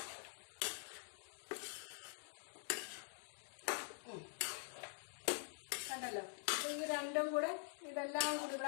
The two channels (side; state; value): right; silent; digital silence